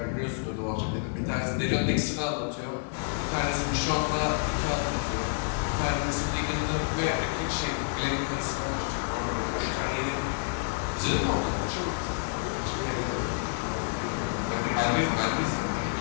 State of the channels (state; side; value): silent; right; 59 dB below the other